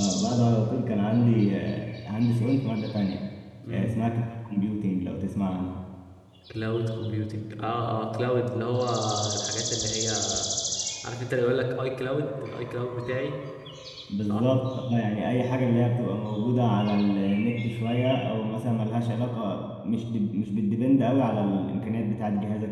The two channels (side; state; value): both; identical; correlation 1.00